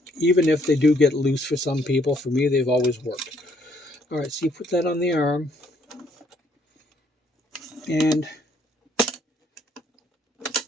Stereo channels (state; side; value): normal; both; correlation 0.67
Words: Even if they do get loose for some people, for me, they've always worked. All right, so you put that on the arm. And